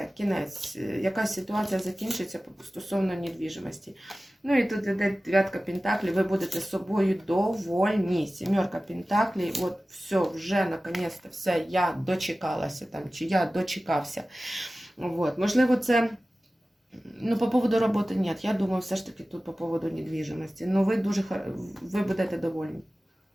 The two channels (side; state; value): both; normal; correlation 0.96